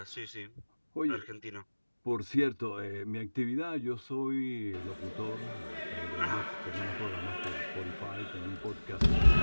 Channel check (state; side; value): inverted; both; correlation -1.00